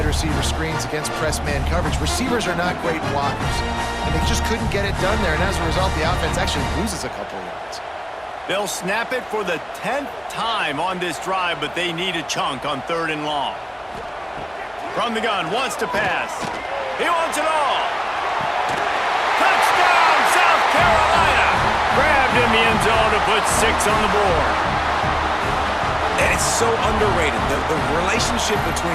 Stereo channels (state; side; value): identical; both; correlation 1.00